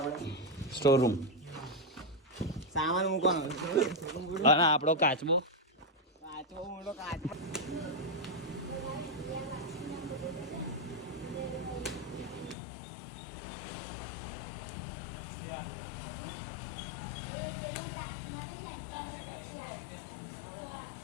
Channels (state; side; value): drops out; right; at 12.6 s